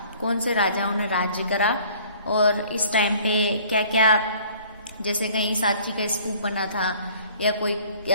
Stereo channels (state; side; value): inverted; both; correlation -0.53